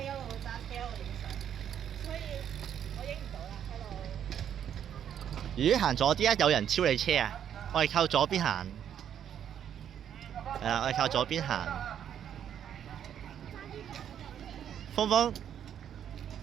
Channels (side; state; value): left; quieter; 9.4 dB